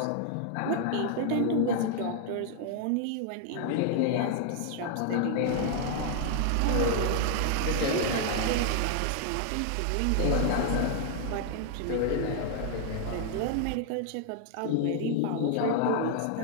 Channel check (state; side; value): different; both; correlation 0.00